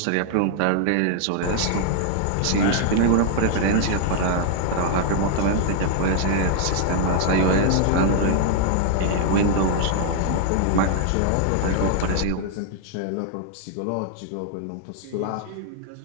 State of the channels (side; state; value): both; different; correlation 0.00